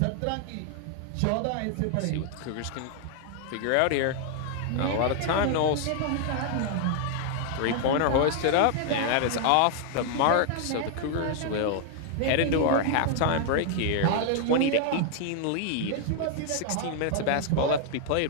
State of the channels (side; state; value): both; different; correlation 0.00